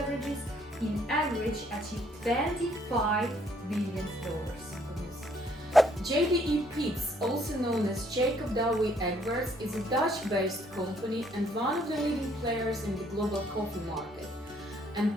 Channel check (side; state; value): both; normal; correlation 0.66